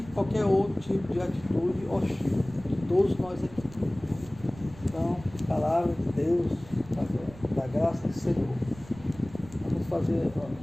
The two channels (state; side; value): noise; right; rumble, 19 dB below the sound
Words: qualquer outro tipo de atitude hostil, de todos nós aqui. Então, palavra de Deus, da graça do Senhor. Vamos fazer,